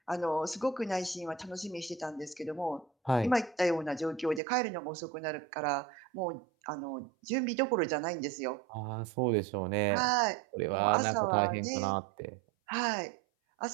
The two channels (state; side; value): drops out; left; at 4.4 s